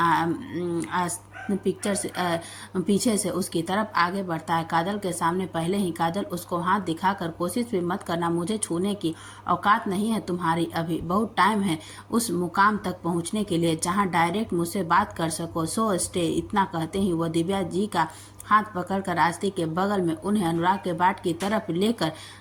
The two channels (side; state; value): both; identical; correlation 1.00